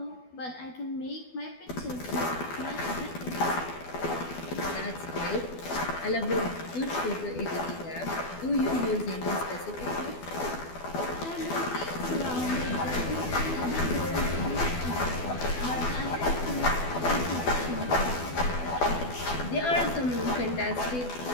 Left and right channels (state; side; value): late; right; 12 ms